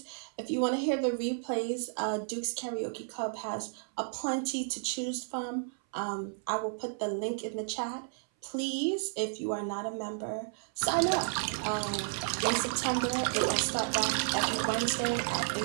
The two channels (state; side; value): silent; left; 56 dB below the other